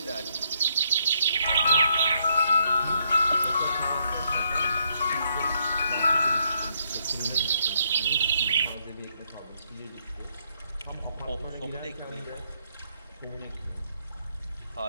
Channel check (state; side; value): inverted; both; correlation -0.74